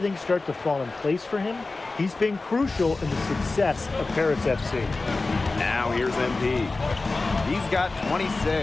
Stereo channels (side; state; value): right; quieter; 3.5 dB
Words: start to fall in place for him. He's been crucial in the success of Paris FC. Now here's MP. He's got